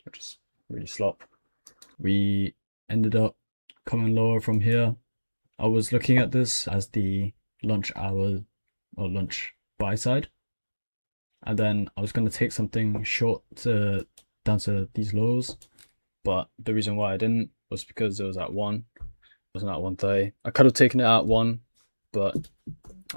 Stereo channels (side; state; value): both; inverted; correlation -1.00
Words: just really slop. We ended up coming lower from here. I was looking at this as the lunch hour or lunch buy side, and then I was going to take something short down to these lows, but the reason why I didn't was because it was at 1. It wasn't at 1:30. I could have taken it at 1, but